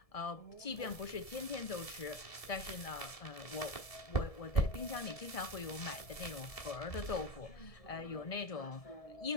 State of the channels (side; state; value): right; late; 1.7 ms